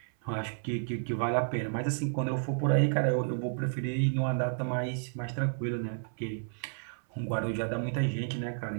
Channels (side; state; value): left; silent; 57 dB below the other